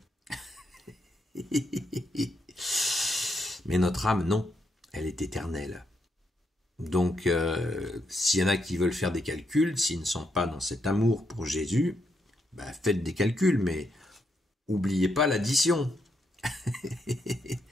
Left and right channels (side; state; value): both; normal; correlation 0.79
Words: Mais notre âme, non, elle est éternelle. Donc, s'il y en a qui veulent faire des calculs, s'ils ne sont pas dans cet amour pour Jésus, faites des calculs, mais oubliez pas l'addition.